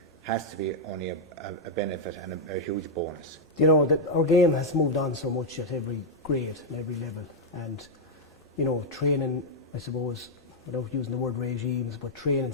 has to be only a benefit and a huge bonus. You know, that our game has moved on so much at every grade and every level, and you know, training, I suppose, without using the word regimes, but training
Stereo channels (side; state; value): both; normal; correlation -0.02